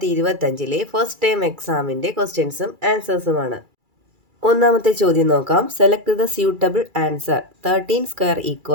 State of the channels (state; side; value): late; left; 2.3 ms